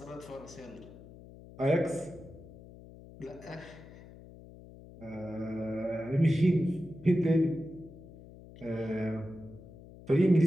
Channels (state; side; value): noise; left; hum, 18 dB below the sound